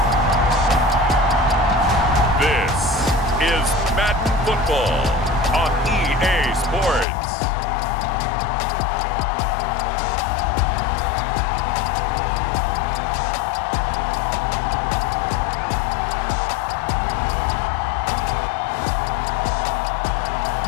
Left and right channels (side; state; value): right; drops out; at 7.1 s